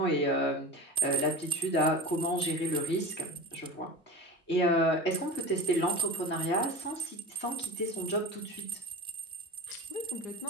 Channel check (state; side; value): normal; both; correlation 0.30